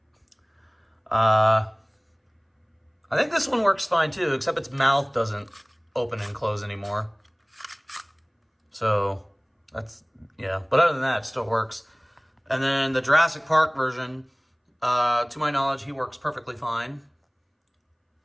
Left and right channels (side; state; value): both; identical; correlation 1.00